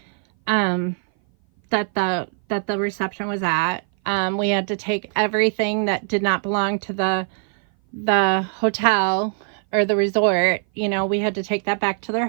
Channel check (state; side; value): silent; left; 58 dB below the other